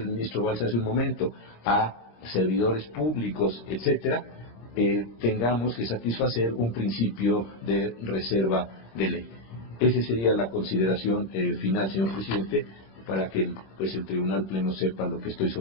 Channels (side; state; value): right; late; 26 ms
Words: el ministro Balsa hace un momento, a servidores públicos, etcétera, tengamos que satisfacer un principio de reserva de ley. Esa sería la consideración final, señor presidente, para que el Tribunal Pleno sepa lo que estoy